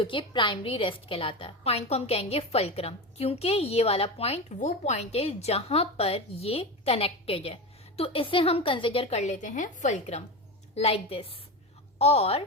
कि प्राइमरी रेस्ट कहलाता है। पॉइंट को हम कहेंगे फुलक्रम, क्योंकि ये वाला पॉइंट वो पॉइंट है जहां पर ये कनेक्टेड है, तो इसे हम कंसिडर कर लेते हैं फुलक्रम, लाइक दिस। और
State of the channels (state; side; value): normal; both; correlation 0.22